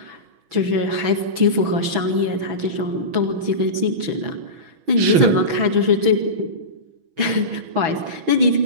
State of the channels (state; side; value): late; left; 6.1 ms